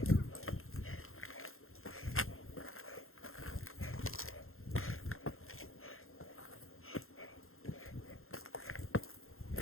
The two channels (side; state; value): right; late; 0.61 ms